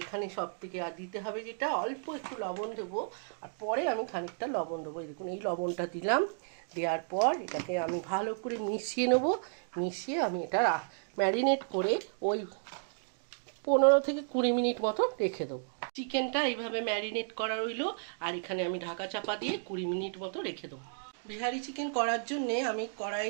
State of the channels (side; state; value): left; silent; digital silence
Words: এখানে সব থেকে আর দিতে হবে যেটা, অল্প একটু লবণ দেবো, আর পরে আমি খানিকটা লবণ দেবো। এই দেখুন, এই লবণটা দিলাম। দেওয়ার পর এটাকে আমি ভালো করে মিশিয়ে নেবো। মিশিয়ে আমি এটা ম্যারিনেট করে ওই 15 থেকে 20 মিনিট মতো রেখে দেবো। চিকেনটা এইভাবে ম্যারিনেট করা রইলো, আর এখানে আমি ঢাকা চাপা দিয়ে 20 মিনিট মতো রেখে দেবো। বিহারি চিকেন করার জন্যে আমি